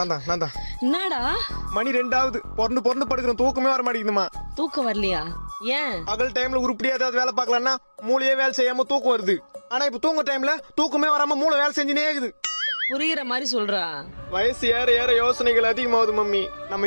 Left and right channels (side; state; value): both; inverted; correlation -1.00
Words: என்னடா மணி 2 பொறந்து படுக்கிறோம், தூக்கமே வர மாட்டேங்குதுமா. தூக்கம் வரலையா? ஏன்? பகல் டைம்ல உருப்படியா ஏதாவது வேலை பார்க்கலாம்னா மூளையே வேலை செய்யாம தூக்கம் வருது. ஆனா இப்ப தூங்க டைம்ல தூக்கமே வராம மூளை வேலை செஞ்சுனே இருக்குது. புரியுற மாதிரி சொல்றா. வயசு ஏற ஏற யோசனைகள் அதிகமாகுது மம்மி.